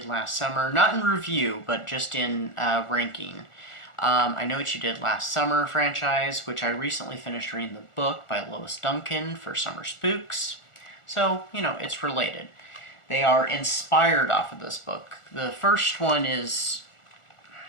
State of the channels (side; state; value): right; late; 1.4 ms